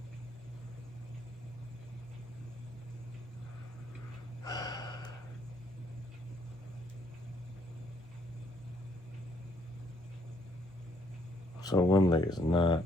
So one leg is not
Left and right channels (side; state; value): both; normal; correlation 0.68